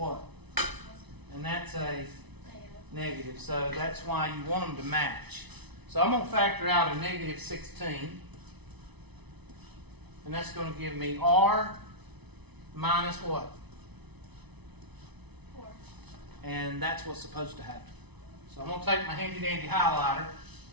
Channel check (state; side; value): late; left; 0.99 ms